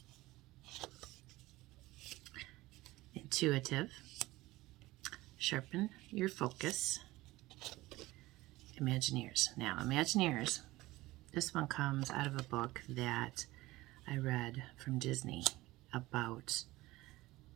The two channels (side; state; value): left; quieter; 18.8 dB